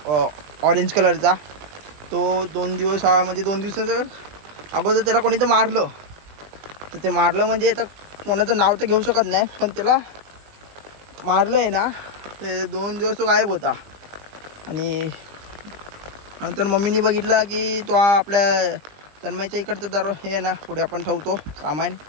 ऑरेंज कलरचा तो 2 दिवस म्हणजे 2 दिवसाचं अगोदर त्याला कोणी तर मारलं तर ते मारलं म्हणजे आता कोणाचं नाव तर घेऊ शकत नाही पण त्याला मारलं आहे ना ते 2 दिवस तो गायब होता आणि नंतर मम्मीने बघितला की तो आपल्या तन्मयच्या इकडचं दर हे आहे ना पुढे आपण ठेवतो सामान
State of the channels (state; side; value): late; left; 20 ms